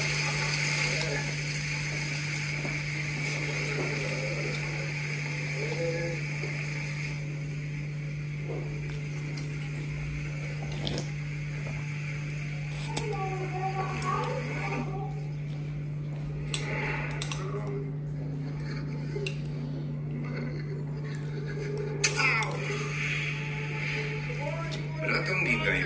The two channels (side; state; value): both; identical; correlation 1.00